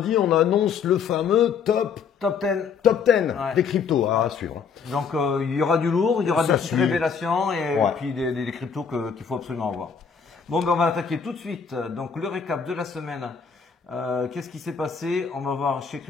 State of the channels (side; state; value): right; quieter; 6.2 dB